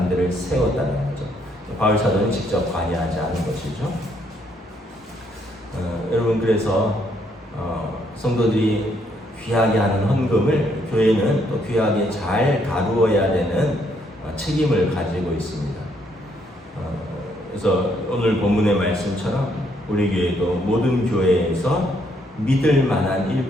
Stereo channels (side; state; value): both; normal; correlation 0.71